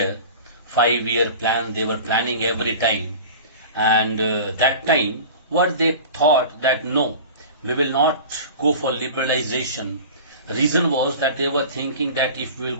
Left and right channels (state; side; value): inverted; both; correlation -0.37